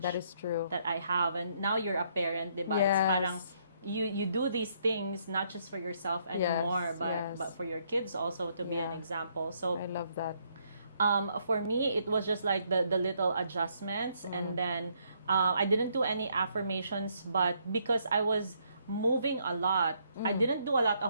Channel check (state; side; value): inverted; both; correlation -0.71